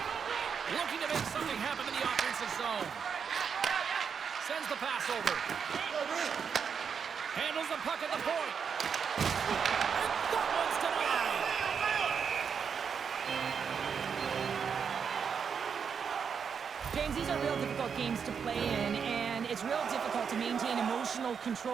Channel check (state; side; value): quieter; left; 6.7 dB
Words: Looking to make something happen in the offensive zone. Sends the pass over. Handles the puck at the point. And that one's denied. James, these are real difficult games to play in, and it's real difficult to maintain emotional